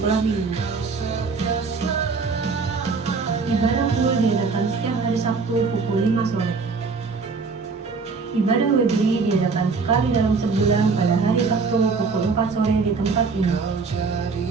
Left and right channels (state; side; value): quieter; left; 4.6 dB